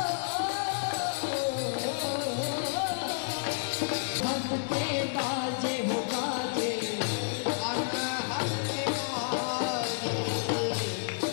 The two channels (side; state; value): right; silent; digital silence